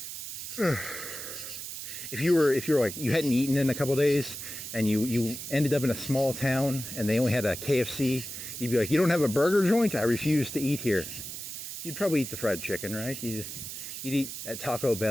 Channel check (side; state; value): right; noise; hiss, 8 dB below the sound